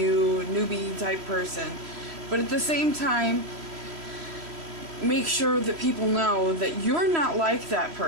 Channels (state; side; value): late; left; 3.1 ms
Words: type person, but at the same time make sure that people know that you're not like that